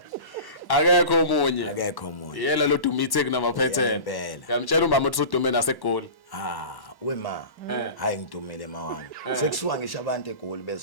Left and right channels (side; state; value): right; late; 1.1 ms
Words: Akekho omunye. Akekho omunye. Yela lo Dumithe kunamaphethene. Yamtshela umbaba ukuthi udume naseGoli. Wema. Hayi ngidumile mawami. Sekusuka ngisho abantu eGoli